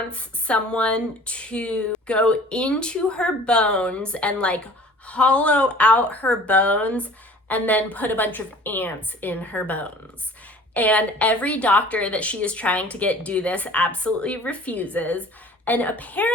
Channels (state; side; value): normal; both; correlation 0.47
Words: someone to go into her bones and like hollow out her bones and then put a bunch of ants in her bones. And every doctor that she is trying to get do this absolutely refuses. And